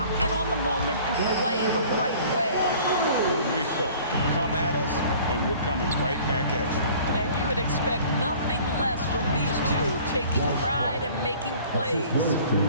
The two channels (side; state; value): both; inverted; correlation -0.49